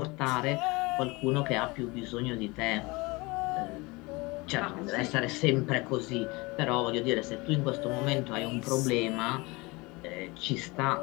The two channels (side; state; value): right; quieter; 24.5 dB